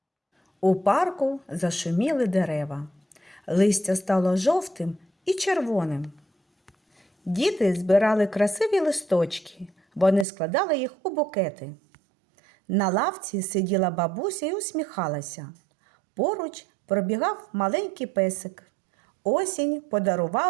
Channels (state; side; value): drops out; left; at 10.2 s